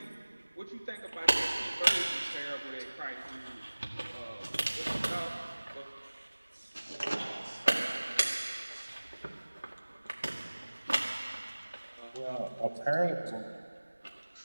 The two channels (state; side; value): inverted; both; correlation -1.00